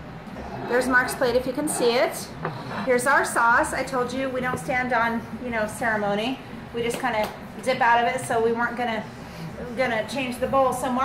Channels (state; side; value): identical; both; correlation 1.00